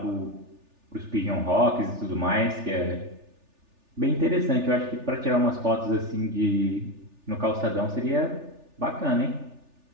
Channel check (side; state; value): left; late; 3.4 ms